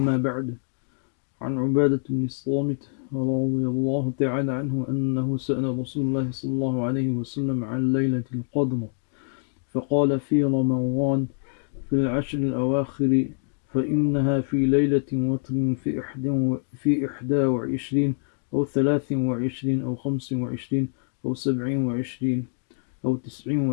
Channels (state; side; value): silent; right; digital silence